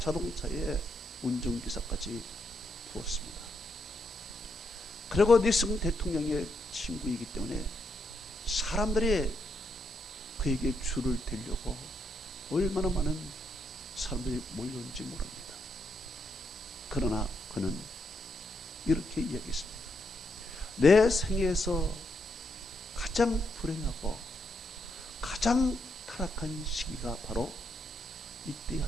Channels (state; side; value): normal; both; correlation 0.79